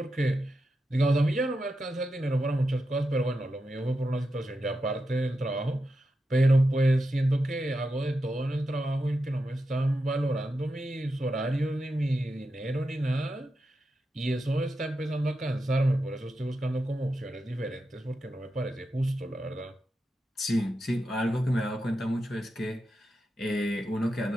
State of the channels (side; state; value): both; normal; correlation 0.88